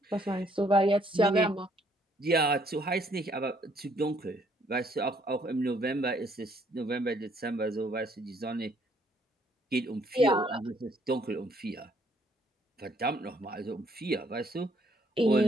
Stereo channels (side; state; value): both; normal; correlation 0.66